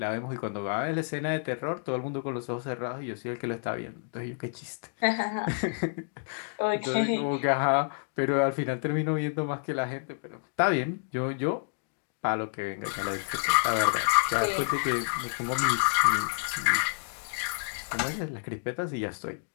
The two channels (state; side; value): silent; right; digital silence